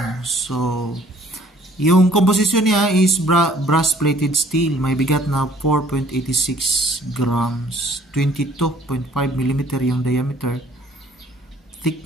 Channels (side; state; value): both; normal; correlation 0.58